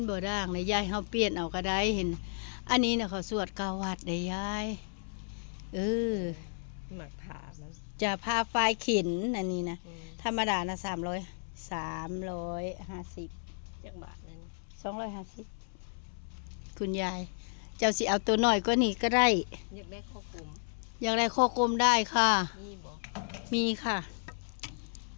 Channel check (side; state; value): right; silent; 56 dB below the other